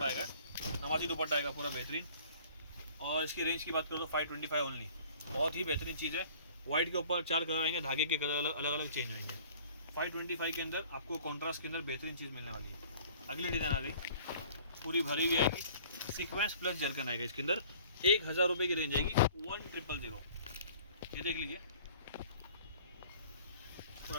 आएगा, नमाजी दुपट्टा आएगा पूरा बेहतरीन। और इसकी रेंज की बात करो तो 525 ओनली, बहुत ही बेहतरीन चीज़ है। वाइट के ऊपर 4 कलर आएंगे, धागे के कलर अलग अलग चेंज होंगे। 525 के अंदर आपको कॉन्ट्रास्ट के अंदर बेहतरीन चीज़ मिलने वाली है। अगली डिज़ाइन आ गई, पूरी भरी हुई आएगी, सीक्वेंस प्लस जरकन आएगा इसके अंदर, 1000 रुपये की रेंज आएगी, 1000। ये देख लीजिए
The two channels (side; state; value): both; inverted; correlation -0.51